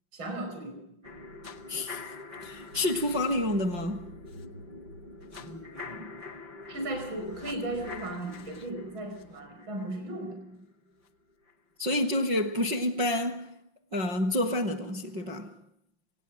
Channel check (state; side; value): late; left; 5.7 ms